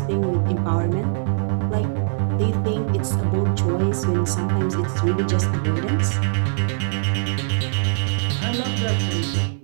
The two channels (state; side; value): silent; left; 64 dB below the other